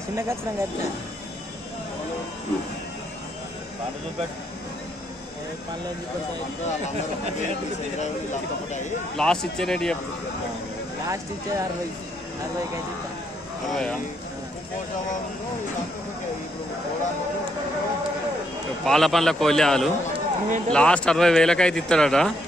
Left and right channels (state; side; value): normal; both; correlation 0.74